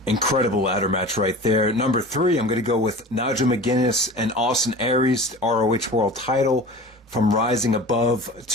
Incredible ladder match right there. Number 3, I'm going to go with Nigel McGuinness and Austin Aries, ROH World Title from Rising Above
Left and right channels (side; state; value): both; normal; correlation 0.37